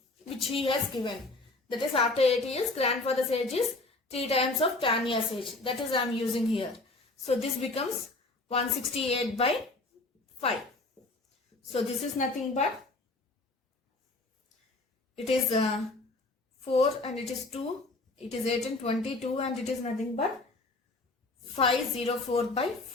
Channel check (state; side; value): quieter; right; 3.1 dB